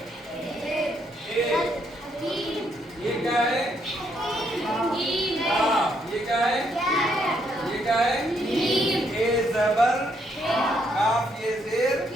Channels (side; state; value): both; normal; correlation 0.74